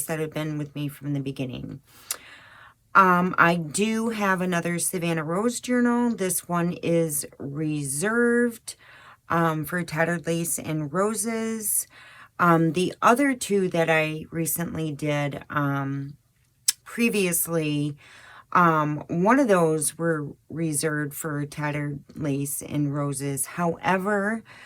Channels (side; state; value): both; identical; correlation 1.00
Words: that have been with me from the beginning. I do have another Savannah Rose Journal. This one is reserved for Tattered Lace and Roses. The other two that I recently did previously, one of those were reserved for Tattered Lace and Roses. However,